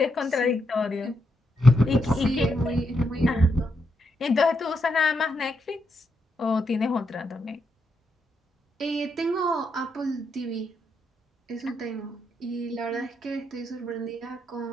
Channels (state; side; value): normal; both; correlation 0.81